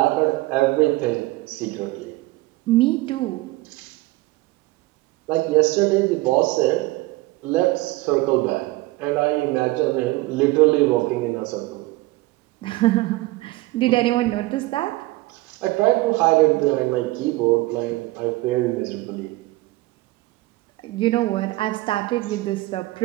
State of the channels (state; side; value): quieter; left; 19.9 dB